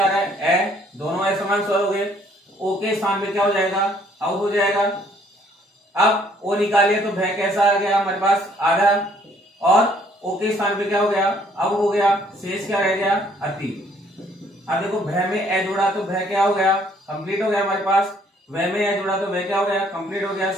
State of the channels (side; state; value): both; normal; correlation 0.63